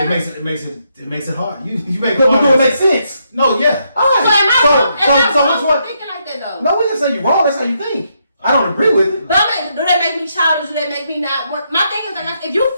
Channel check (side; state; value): both; inverted; correlation -0.78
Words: it makes it hard. You make it But hard. do it make sense? No, yeah. All right. So which one? Thinking like that though. No, we didn't say you're wrong. That's how you think. I don't agree with it. But I mean, do that make me childish? Do that make me not work? My thing is like, if you